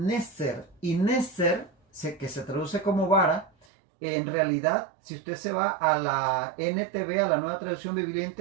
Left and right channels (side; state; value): left; drops out; at 3.7 s